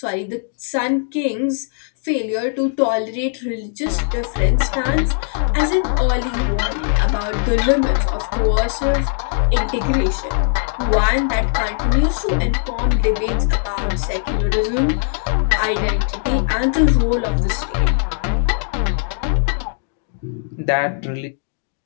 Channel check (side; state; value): right; silent; digital silence